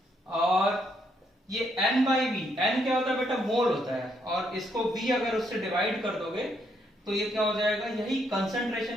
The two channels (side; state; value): both; normal; correlation 0.74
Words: और ये N/V, N क्या होता है बेटा, मोल होता है, और इसको V अगर उससे डिवाइड कर दोगे तो ये क्या हो जाएगा, यही